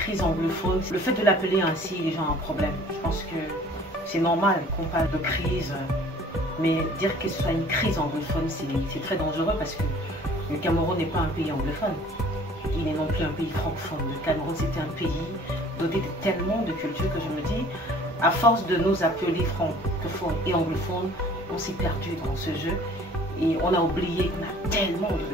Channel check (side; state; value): both; normal; correlation 0.51